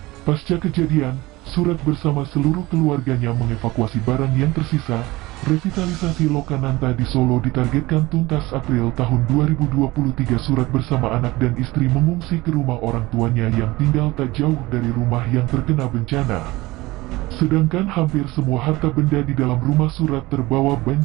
Pasca kejadian, Surat bersama seluruh keluarganya mengevakuasi barang yang tersisa. Revitalisasi Lokananta di Solo ditargetkan tuntas April tahun 2023. Surat bersama anak dan istri mengungsi ke rumah orang tuanya yang tinggal tak jauh dari rumah yang terkena bencana. Sedangkan hampir semua harta benda di dalam rumah Surat terbawa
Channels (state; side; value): quieter; left; 20.1 dB